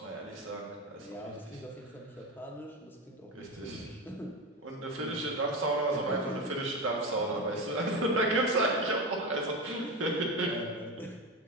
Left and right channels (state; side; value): normal; both; correlation 0.20